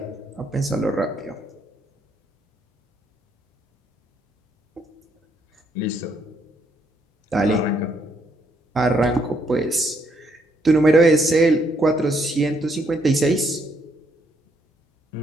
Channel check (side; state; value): both; normal; correlation 0.72